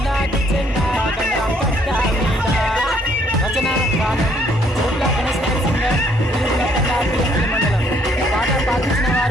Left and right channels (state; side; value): normal; both; correlation 0.66